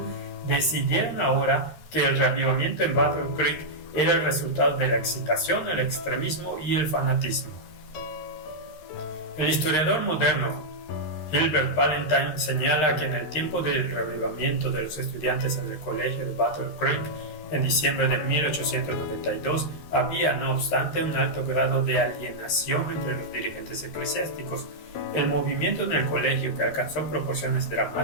decidieron ahora que el reavivamiento en Battle Creek era el resultado de la excitación, el extremismo y el fanatismo. El historiador moderno Gilbert Valentine señala que en el tiempo del reavivamiento de los estudiantes en el colegio de Battle Creek, en diciembre de 1892, había, no obstante, un alto grado de alienación entre los dirigentes eclesiásticos. El movimiento en el colegio, que alcanzó proporciones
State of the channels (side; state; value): right; late; 13 ms